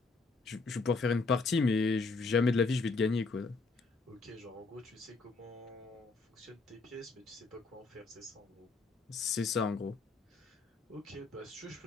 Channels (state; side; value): quieter; right; 4.0 dB